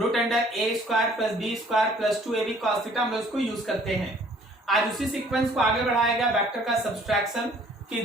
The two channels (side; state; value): both; normal; correlation 0.57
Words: under a square plus b square plus 2ab cos theta हम लोग इसको यूज करते हैं। आज उसी सीक्वेंस को आगे बढ़ाया गया वेक्टर का सब्सट्रैक्शन, कि